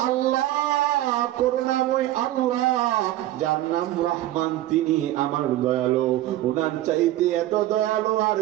আল্লাহ, করুণাময় আল্লাহ, যার নাম রহমান, তিনি আমার দয়ালু। ওনার চাইতে এত দয়ালু আর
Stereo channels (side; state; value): left; quieter; 14.6 dB